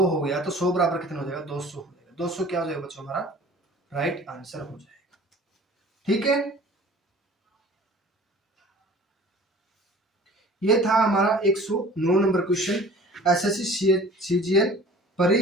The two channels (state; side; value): normal; both; correlation 0.46